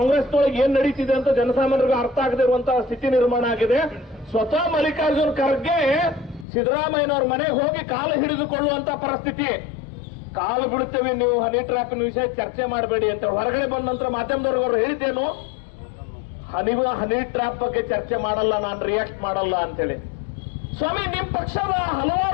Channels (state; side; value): drops out; right; at 6.5 s